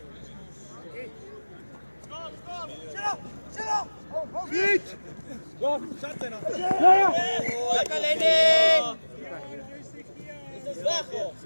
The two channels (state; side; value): inverted; both; correlation -1.00